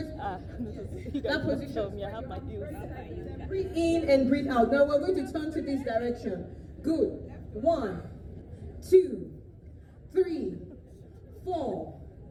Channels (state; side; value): identical; both; correlation 1.00